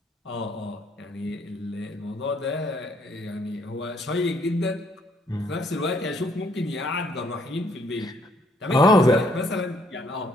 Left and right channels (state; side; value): normal; both; correlation 0.67